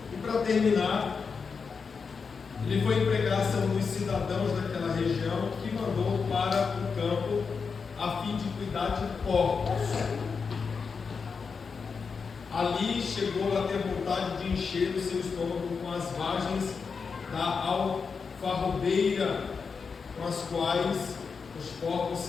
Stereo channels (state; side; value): quieter; right; 5.4 dB